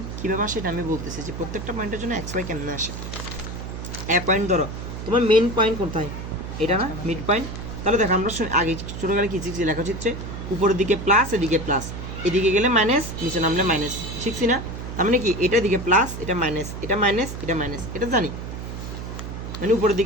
কীভাবে আসে এটা আমি বলতেছি, যে প্রত্যেকটা পয়েন্টের জন্য এক্স ওয়াই কেমনে আসে। এ পয়েন্ট ধরো তোমার মেন পয়েন্ট কোথায়, এটা না মিড পয়েন্ট, তাহলে দেখো আমরা আগে ছোটোবেলায় কী শিখছি, লেখাচিত্রে উপরের দিকে প্লাস, এদিকে প্লাস, এদিকে গেলে মাইনাস, নিচে নামলে মাইনাস, শিখছি না। তার মানে কি এটা দিকে প্লাস, এটা মাইনাস, এটা মাইনাস, এটা মাইনাস, এটা জানি, মানে উপরের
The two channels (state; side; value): noise; right; hum, 8 dB below the sound